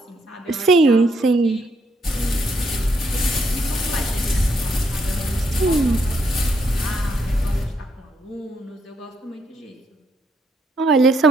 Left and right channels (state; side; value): normal; both; correlation 0.75